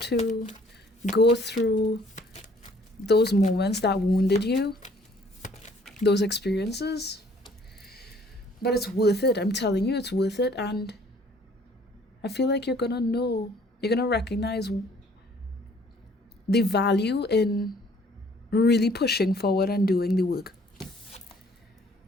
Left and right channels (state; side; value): normal; both; correlation 0.58